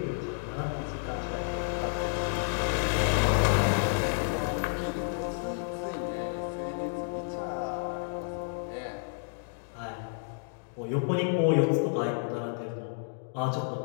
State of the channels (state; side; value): silent; right; digital silence